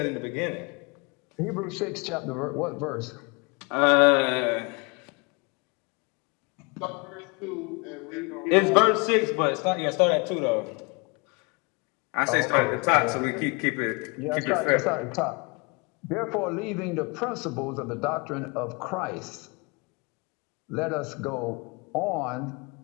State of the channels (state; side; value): quieter; right; 30.7 dB